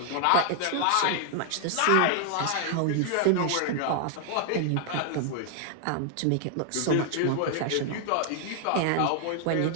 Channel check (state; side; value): different; both; correlation 0.00